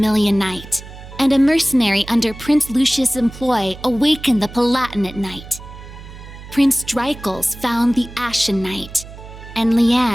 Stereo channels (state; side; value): noise; right; hum, 15 dB below the sound